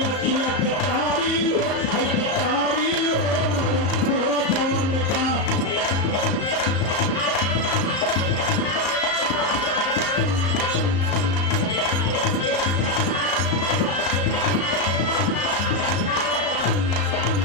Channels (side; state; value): right; late; 35 ms